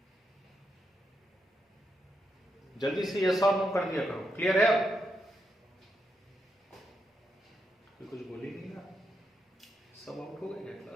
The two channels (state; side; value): normal; both; correlation 0.83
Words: जल्दी से यस और नो कर दिया करो। क्लियर है? अब कुछ बोल ही नहीं ना, सब आउट हो गए